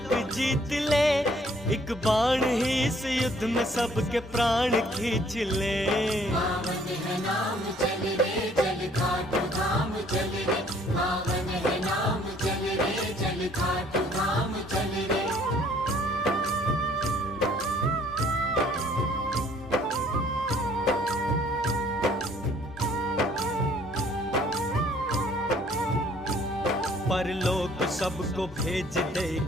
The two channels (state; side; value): normal; both; correlation 0.60